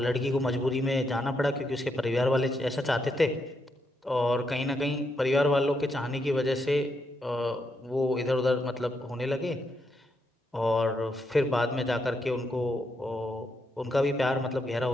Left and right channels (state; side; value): normal; both; correlation 0.80